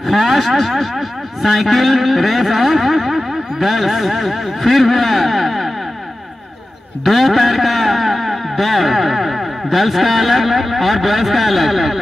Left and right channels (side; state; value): both; normal; correlation 0.95